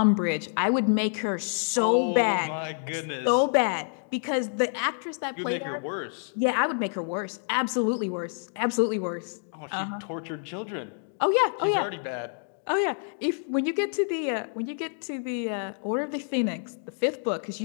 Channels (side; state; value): right; silent; digital silence